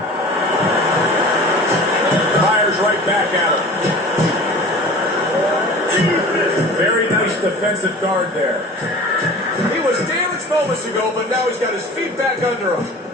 defensive guard there. He was damaged moments ago, but now he's got his feet back under him.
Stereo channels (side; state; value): both; normal; correlation 0.40